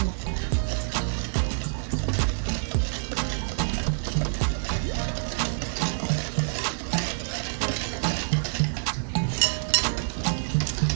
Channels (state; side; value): silent; left; digital silence